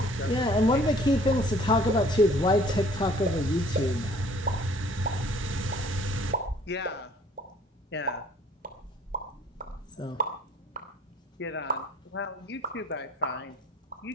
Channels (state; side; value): normal; both; correlation 0.55